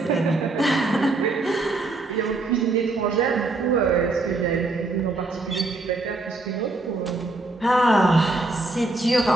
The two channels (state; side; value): quieter; left; 3.2 dB